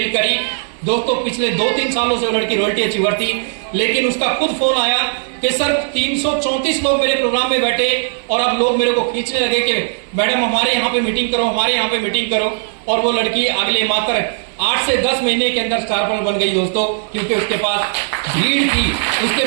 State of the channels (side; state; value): left; silent; 59 dB below the other